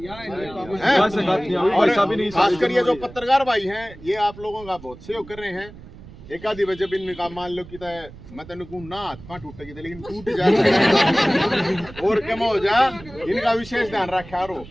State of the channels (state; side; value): noise; right; rumble, 18 dB below the sound